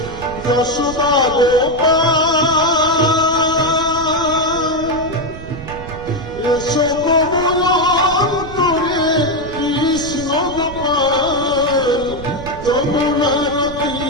যশোদা এসো তোমার অন্তরে কৃষ্ণ গোপাল। যমুনার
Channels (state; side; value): noise; right; rumble, 12 dB below the sound